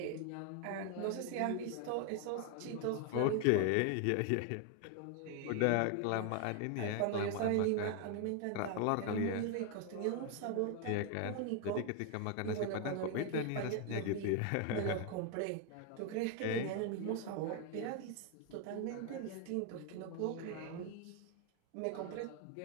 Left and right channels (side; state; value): both; different; correlation 0.01